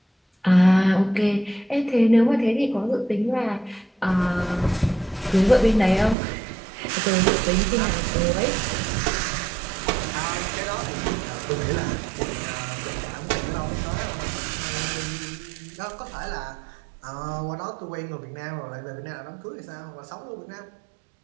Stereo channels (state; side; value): drops out; left; at 6.2 s